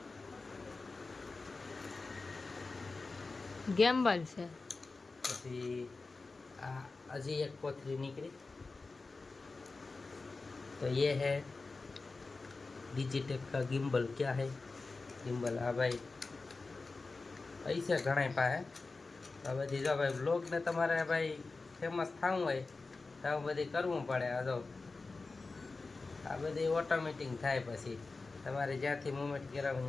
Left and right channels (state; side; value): quieter; right; 3.8 dB